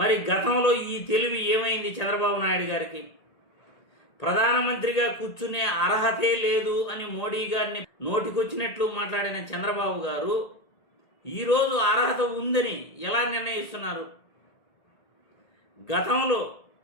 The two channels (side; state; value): right; late; 1.8 ms